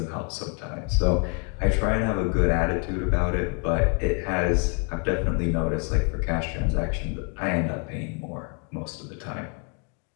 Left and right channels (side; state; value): right; quieter; 38.5 dB